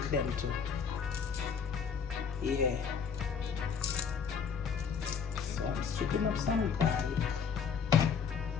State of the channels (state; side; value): quieter; right; 6.5 dB